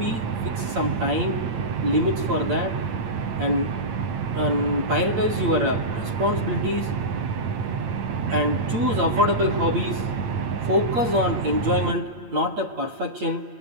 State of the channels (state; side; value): late; left; 8.8 ms